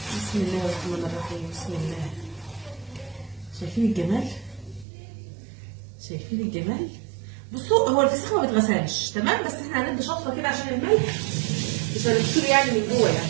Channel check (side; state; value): left; drops out; at 4.9 s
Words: بسم الله الرحمن الرحيم. بسم الله. شايفين الجمال؟ شايفين الجمال؟ بصوا هو الفسيخ ما بيتغسلش تمام، بس احنا هندي شطفه كده عشان الملح مش هنغسله يعني من جوه، يعني